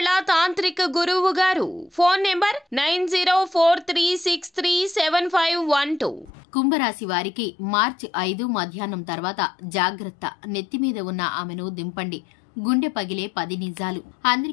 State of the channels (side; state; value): right; drops out; at 6.3 s